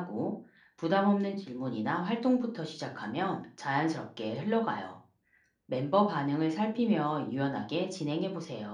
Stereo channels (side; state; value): both; identical; correlation 1.00